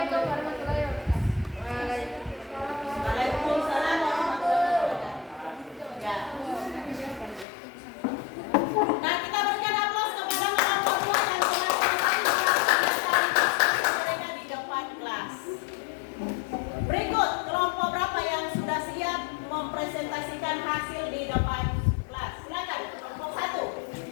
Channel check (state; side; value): drops out; right; at 7.5 s